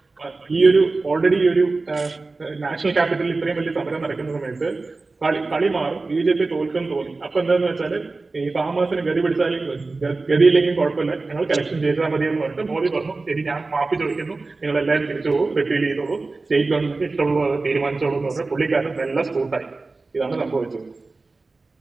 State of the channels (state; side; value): quieter; left; 3.6 dB